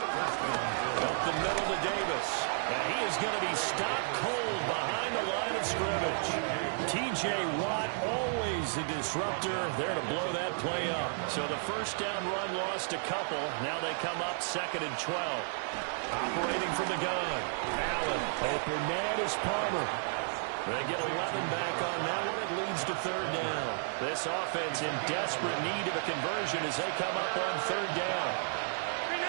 Up the middle to Davis. And he is going to be stopped cold behind the line of scrimmage. T.J. Watt, always a disruptor, there to blow that play up. So the first down run lost a couple. Now they come up second and 12. Operating from the gun. Allen. Open man is Palmer. They get 11 back on that one. It leads to third down. This offense in desperate need of a conversion as they come up on third down.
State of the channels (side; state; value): left; silent; digital silence